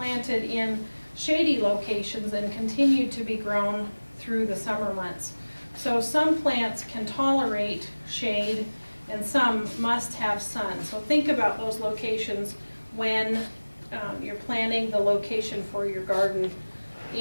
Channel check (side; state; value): both; inverted; correlation -1.00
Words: in shady locations and continue to be grown through the summer months. So some plants can tolerate shade and some must have sun. So think about those locations when you're planning the location for your garden